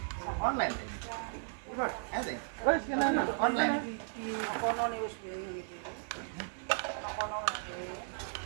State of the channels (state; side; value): silent; left; digital silence